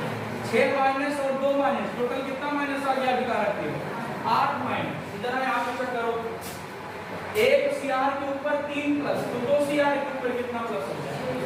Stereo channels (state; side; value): identical; both; correlation 1.00